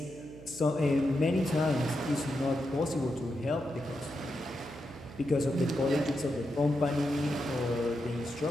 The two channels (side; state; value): right; noise; hum, 17 dB below the sound